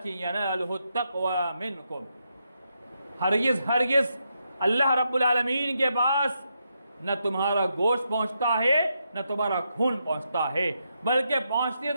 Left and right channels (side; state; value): both; inverted; correlation -0.82